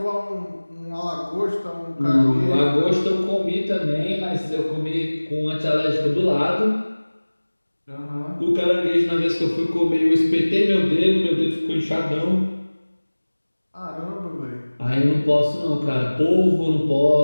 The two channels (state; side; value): inverted; both; correlation -1.00